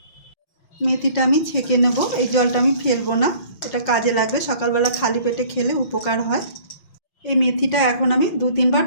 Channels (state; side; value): late; right; 5.5 ms